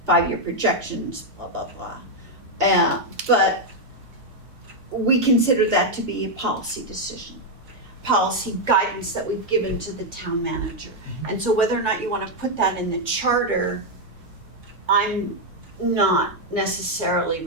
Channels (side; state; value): both; normal; correlation 0.01